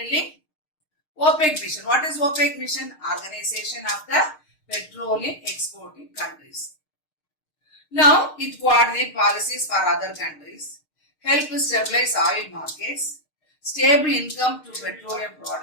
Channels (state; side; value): late; right; 6.5 ms